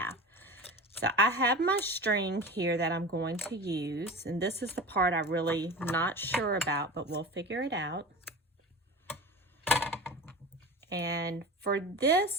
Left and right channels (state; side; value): normal; both; correlation 0.32